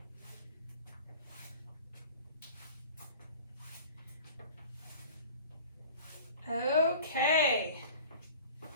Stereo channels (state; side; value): inverted; both; correlation -0.43